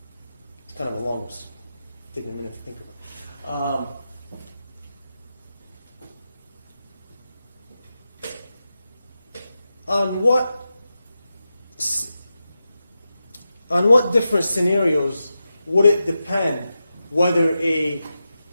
It's kind of a long one. It's taking a minute to think about. On what different scenarios would it depend whether a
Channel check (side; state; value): both; inverted; correlation -0.91